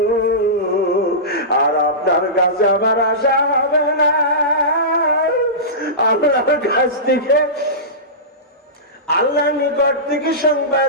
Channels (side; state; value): both; normal; correlation -0.19